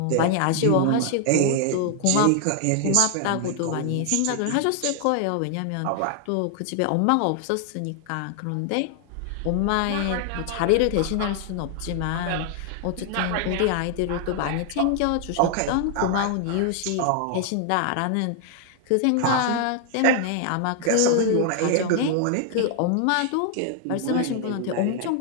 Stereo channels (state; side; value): different; both; correlation 0.00